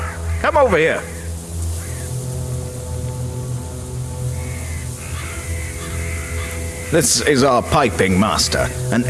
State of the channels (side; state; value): both; identical; correlation 1.00